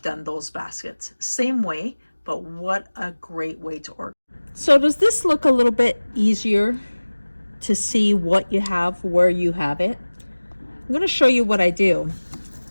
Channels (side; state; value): both; inverted; correlation -1.00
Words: done those baskets. Same way, but what a great way to organize. So does this look a little bit easier to see what you have, where you have it? I'm going to show you what I do.